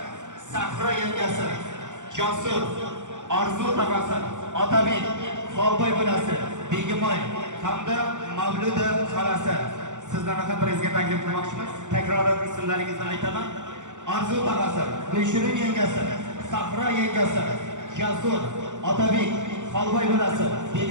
Sahro yangasi, Josur, Orzu tog'asi, Otabek, Xolboy bolasi, Begimoy hamda Mavluda xolasi sizlarni ham prezga taklif qilmoqchimiz. Takrorlab ismlaringizni aytaman. Orzu tog'asi, Gulshurun yangasi, Sahro yangasi, Josur, Otabek, Xolboy bolasi,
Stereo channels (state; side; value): late; left; 0.85 ms